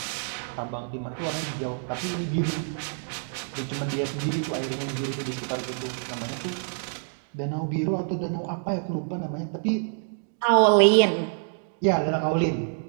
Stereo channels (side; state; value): left; silent; digital silence